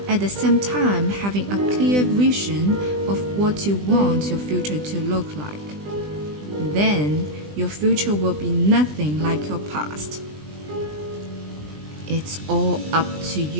at the same time having a clear vision of what you want your future to look like, then your future will be nothing like your past. It's all up to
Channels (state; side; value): late; left; 20 ms